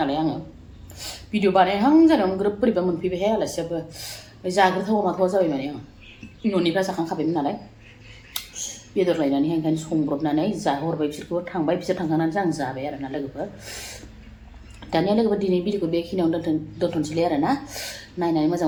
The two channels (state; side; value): identical; both; correlation 1.00